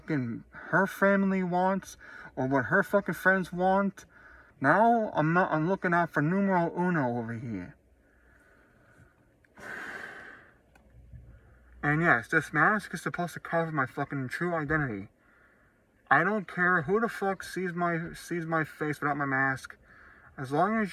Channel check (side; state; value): both; identical; correlation 1.00